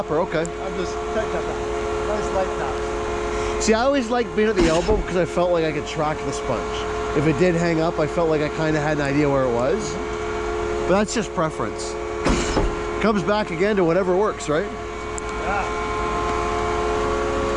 Okay. I'm just tight tap. I just like that. See, I always liked being at the elbow because I felt like I could track the sponge. If it did hang up, I felt like I kind of had an idea where it was. But that's just preference. Comes back again to whatever works, right? Yeah.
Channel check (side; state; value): both; identical; correlation 1.00